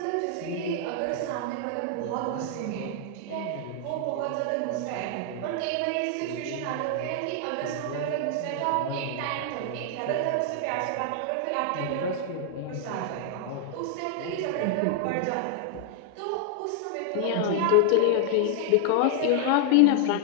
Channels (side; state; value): both; different; correlation 0.00